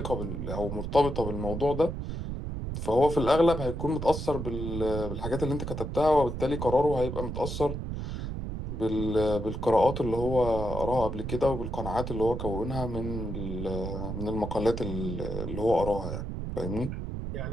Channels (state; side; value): noise; right; rumble, 5 dB below the sound